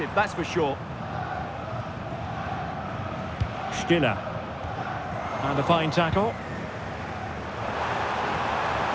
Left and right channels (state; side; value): identical; both; correlation 1.00